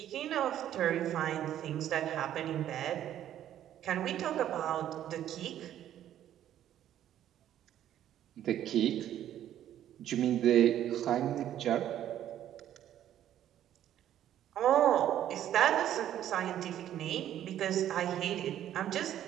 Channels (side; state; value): left; quieter; 11.4 dB